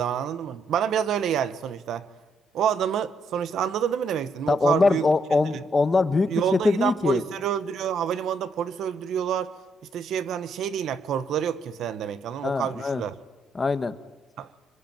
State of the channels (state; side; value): normal; both; correlation 0.74